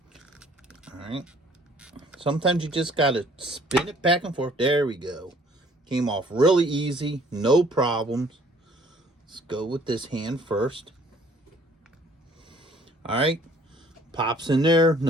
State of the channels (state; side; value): normal; both; correlation 0.58